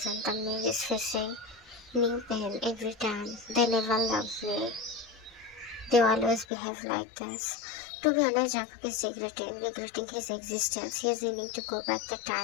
the man is facing new pain every time. They never loved me. They always behave like this. To be honest, Jungkook is regretting his existence. He is willing to go back the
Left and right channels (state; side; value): drops out; right; at 6.5 s